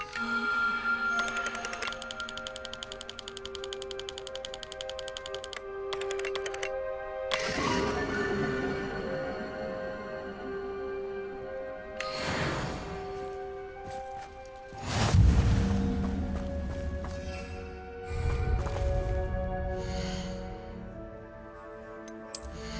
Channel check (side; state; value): both; identical; correlation 1.00